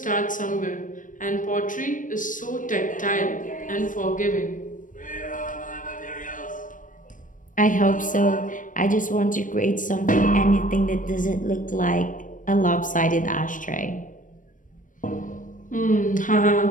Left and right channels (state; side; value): late; right; 0.38 ms